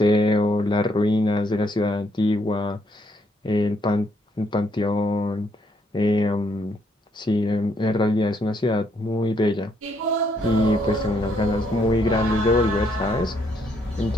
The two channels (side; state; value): both; normal; correlation 0.72